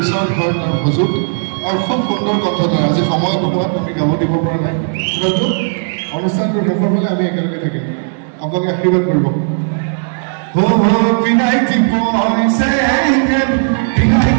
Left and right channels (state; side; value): silent; left; digital silence